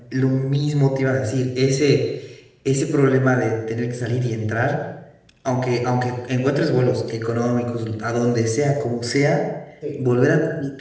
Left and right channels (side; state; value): both; identical; correlation 1.00